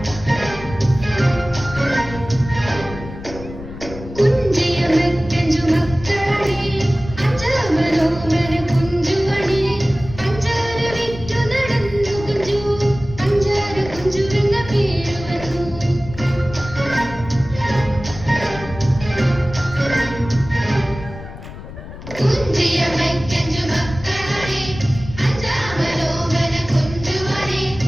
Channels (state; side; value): noise; left; rumble, 13 dB below the sound